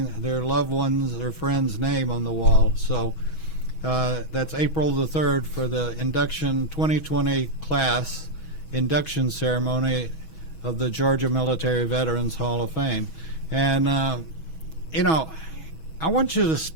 their loved ones or friends' name on the wall. So that's April the 3rd for the induction 2020 class induction ceremony of the Georgia Military Veterans Hall of Fame. And I want you to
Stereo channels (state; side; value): late; right; 6.2 ms